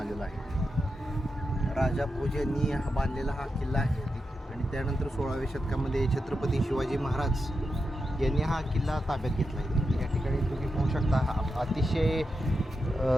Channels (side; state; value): both; normal; correlation 0.88